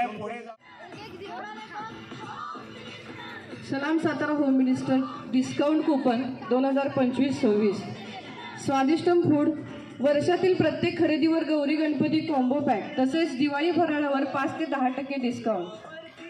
पुढे जा। सलाम Satara home minister discount coupon 2025-26। Swadishtam food, वर्षातील प्रत्येक खरेदीवर गौरी गणपती कॉम्बो पॅक, तसेच दिवाळी फराळावर 5 ते 10%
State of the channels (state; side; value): identical; both; correlation 1.00